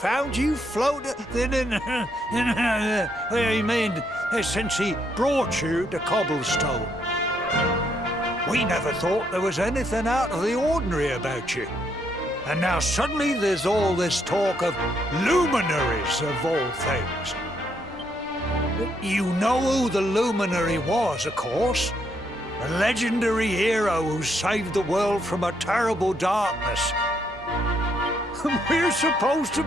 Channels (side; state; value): both; normal; correlation 0.74